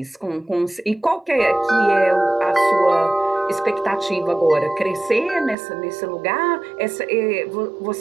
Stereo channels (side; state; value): left; drops out; at 5.6 s